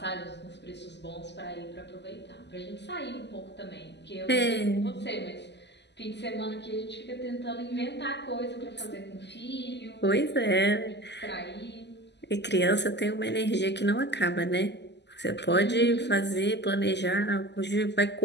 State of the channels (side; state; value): right; late; 0.50 ms